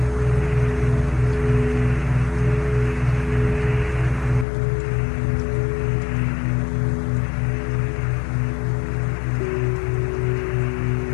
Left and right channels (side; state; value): right; drops out; at 4.5 s